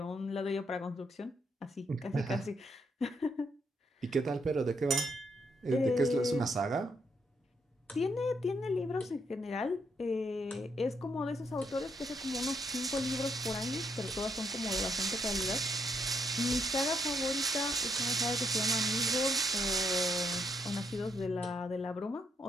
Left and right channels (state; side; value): normal; both; correlation 0.76